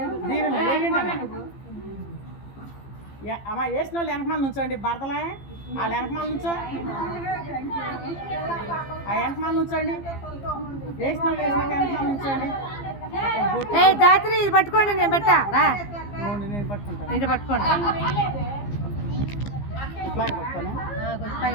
అమ్మ వేసిన వాళ్ళు వెనకమాల నుంచోండి భర్తలే వాళ్ళు వెనకమాల నుంచో ఆ వెనకమాల నుంచోండి వేసిన వాళ్ళు వెనకమాల నుంచోండి. జాతర ఇది పట్టుకోండి నేను పెట్టా రా నేను పట్టుకుంటాను ఇది పట్టుకోండి ఇట్లాగే పట్టుకోను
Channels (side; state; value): right; late; 15 ms